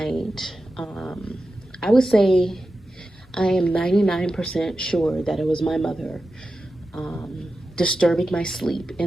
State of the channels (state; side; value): normal; both; correlation 0.92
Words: I would say I am 99% sure that it was my mother disturbing my sleep,